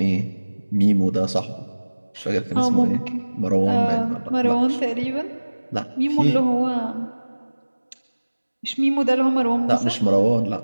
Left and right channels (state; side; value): inverted; both; correlation -1.00